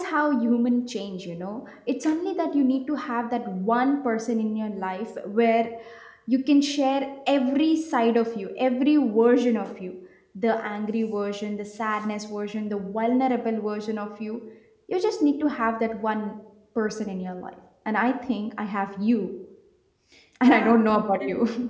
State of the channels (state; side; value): identical; both; correlation 1.00